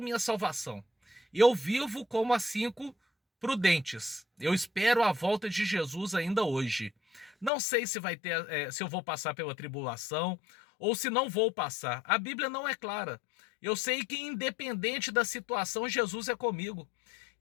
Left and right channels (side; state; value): right; drops out; at 7.5 s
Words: salvação. Eu vivo como as 5 prudentes. Eu espero a volta de Jesus ainda hoje. Não sei se vai ter, se eu vou passar pela tribulação ou se não vou passar. A Bíblia não é clara. Eu sei que independente da situação, Jesus é comigo.